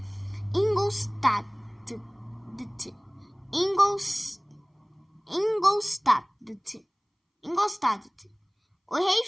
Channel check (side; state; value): both; identical; correlation 1.00